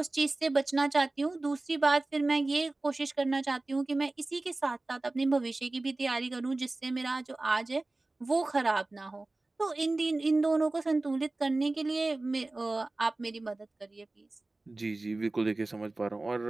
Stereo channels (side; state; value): left; quieter; 3.0 dB